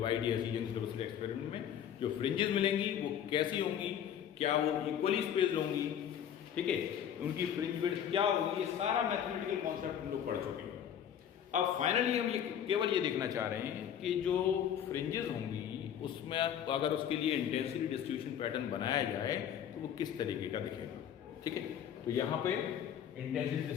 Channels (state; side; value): quieter; right; 9.4 dB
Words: YDSE Young's double slit experiment में जो फ्रिंजेस मिलेंगी वो कैसी होंगी, क्या वो इक्वली स्पेस्ड होंगी, ठीक है, उनकी फ्रिंज विड्थ क्या होगी, ये सारा मैथमेटिकल कॉन्सेप्ट हम लोग पढ़ चुके हैं। अब फाइनली हम ये केवल ये देखना चाह रहे हैं कि जो फ्रिंजेस होंगी उसमें अगर उसके लिए इंटेंसिटी डिस्ट्रीब्यूशन पैटर्न बनाया जाए तो वो किस तरीके का दिखेगा, ठीक है। तो यहाँ पे इंटेंसिटी